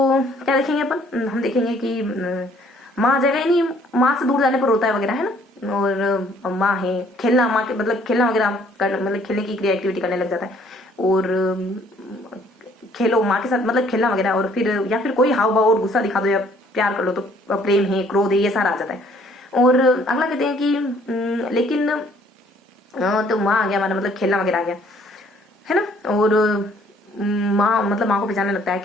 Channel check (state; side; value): normal; both; correlation 0.61